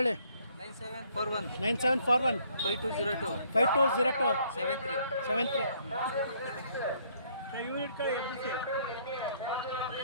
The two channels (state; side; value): inverted; both; correlation -0.64